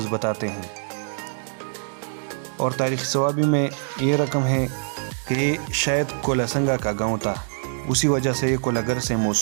بتاتے ہیں۔ اور تاریخ سوابی میں یہ رقم ہے کہ یہ شاید کولاسنگا کا گاؤں تھا، اسی وجہ سے یہ کولگر سے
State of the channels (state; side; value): silent; left; digital silence